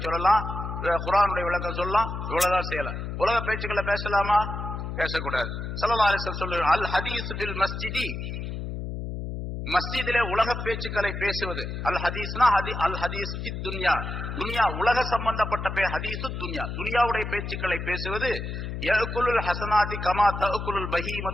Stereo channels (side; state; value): left; noise; hum, 5 dB below the sound